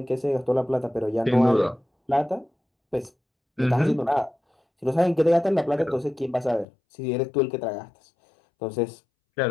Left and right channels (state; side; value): drops out; right; at 6.7 s